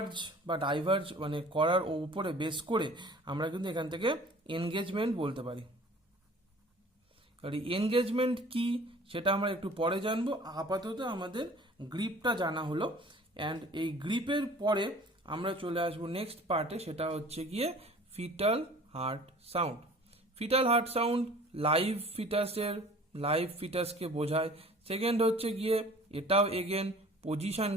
বা ডাইভার্জ মানে করার উপরে বেস করে আমরা কিন্তু এখান থেকে এনগেজমেন্ট বলতে পারি। আর এনগেজমেন্ট কি সেটা আমরা একটু পরে জানবো, আপাতত আমাদের গ্রিপটা জানা হলো। অ্যান্ড এই গ্রিপের পরে আমরা চলে আসবো নেক্সট পার্টে, সেটা হচ্ছে গিয়ে fetal heart sound. Fetal heart sound live ফিটাসকে বোঝায়। সেকেন্ড হচ্ছে গিয়ে এটাও এগেন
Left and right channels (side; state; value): both; normal; correlation 0.47